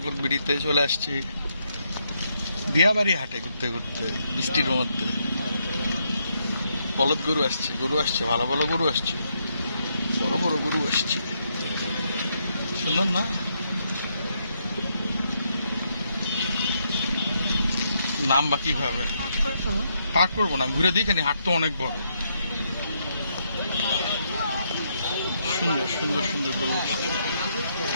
ব্লগ ভিডিওতে চলে আসছি দিয়াবাড়ি হাটে ঘুরতে ঘুরতে বৃষ্টির মধ্যে। বলদ গরু আসছে, ভালো ভালো গরু আসছে, বড় বড় গরু আসছে, সুন্দর না? নাম বা কিভাবে পাক করবো না, ঘুরে দেখেনি, হাট তো অনেক বড়। সুন্দর সুন্দর সুন্দর গরু আসছে।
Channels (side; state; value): both; inverted; correlation -0.77